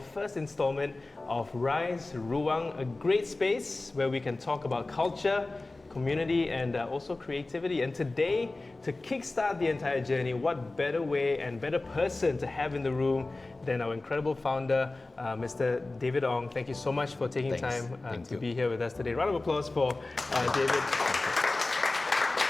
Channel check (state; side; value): quieter; right; 3.1 dB